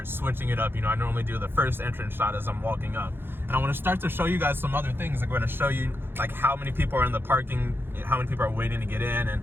switching it up. You know, I normally do the first entrance shot as I'm walking up, and I want to start to show you guys some other things. I'm going to show you like how many people are in the parking, how many people are waiting to get in,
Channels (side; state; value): left; late; 0.10 ms